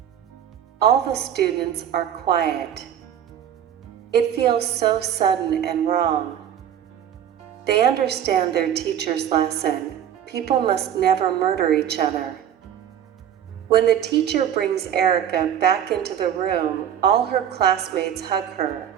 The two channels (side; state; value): left; quieter; 9.7 dB